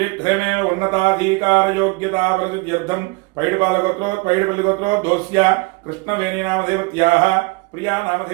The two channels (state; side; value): quieter; left; 27.0 dB